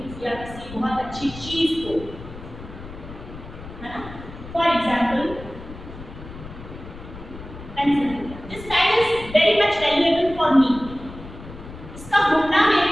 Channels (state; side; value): noise; left; rumble, 14 dB below the sound